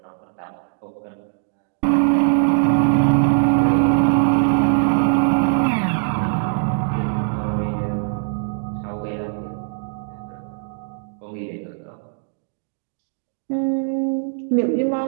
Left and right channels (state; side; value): silent; left; digital silence